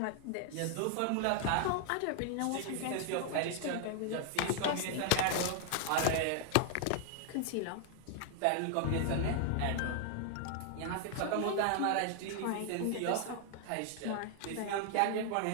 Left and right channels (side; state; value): both; different; correlation 0.00